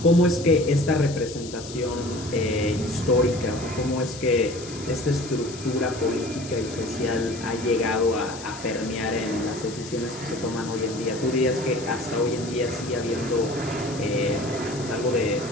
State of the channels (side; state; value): left; noise; hiss, 14 dB below the sound